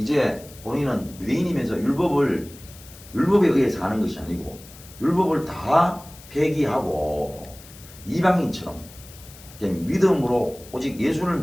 본인은 유대인이면서 율법에 의해 사는 것이 아니고 율법을 다 폐기하고 이방인처럼 믿음으로 오직 예수를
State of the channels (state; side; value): noise; left; hiss, 20 dB below the sound